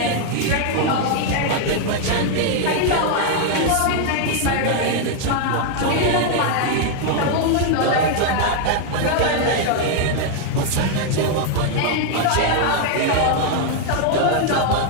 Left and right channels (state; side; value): different; both; correlation 0.00